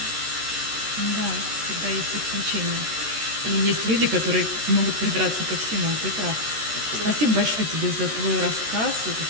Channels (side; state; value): left; late; 13 ms